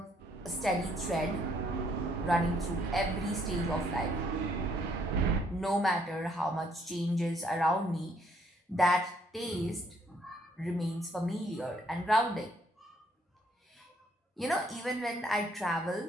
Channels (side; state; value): both; normal; correlation 0.68